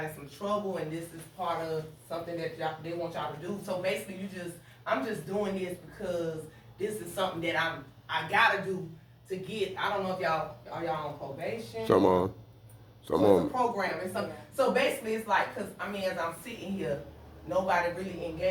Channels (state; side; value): identical; both; correlation 1.00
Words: in some trouble and this is part of something that they want y'all to do. So basically I'm just doing this because this is something that I gotta do to get, I don't know if y'all on probation. Some on. So it's a program and something. So basically it's like, cause as I'm sitting here, nobody really